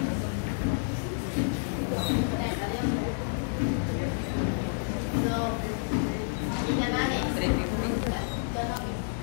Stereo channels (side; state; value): right; silent; digital silence